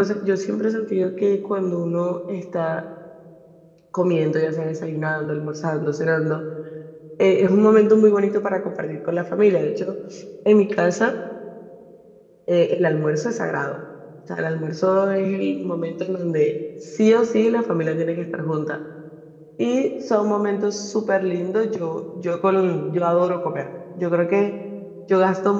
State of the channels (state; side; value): identical; both; correlation 1.00